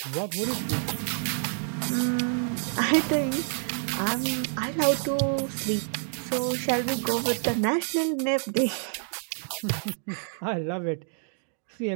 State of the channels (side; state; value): left; silent; 59 dB below the other